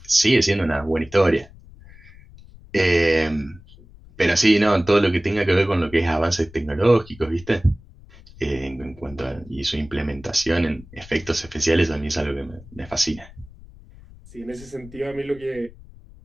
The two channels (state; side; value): noise; left; rumble, 21 dB below the sound